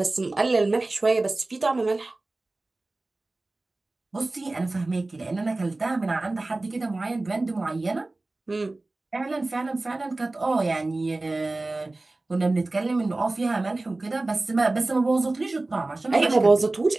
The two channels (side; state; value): left; quieter; 3.0 dB